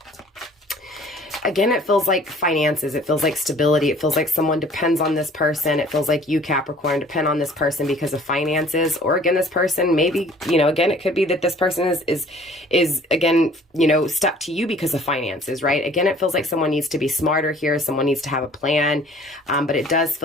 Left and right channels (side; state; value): both; normal; correlation 0.52